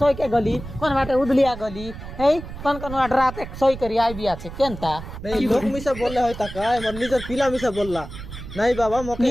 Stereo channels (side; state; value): right; noise; rumble, 12 dB below the sound